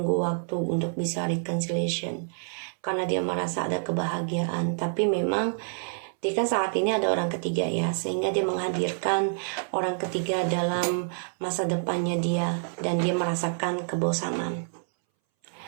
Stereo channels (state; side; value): silent; left; 60 dB below the other